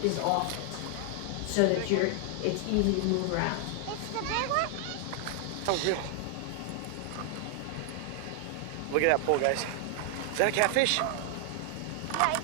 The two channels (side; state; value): both; different; correlation 0.00